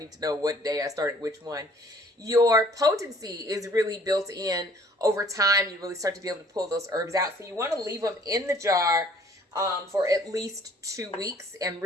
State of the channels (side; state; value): both; normal; correlation 0.56